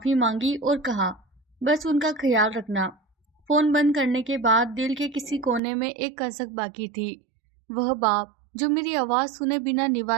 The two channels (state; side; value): drops out; left; at 5.6 s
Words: मांगी और कहा, बस उनका ख्याल रखना। फोन बंद करने के बाद दिल के किसी कोने में एक कसक बाकी थी। वह बाप जो मेरी आवाज सुने बिना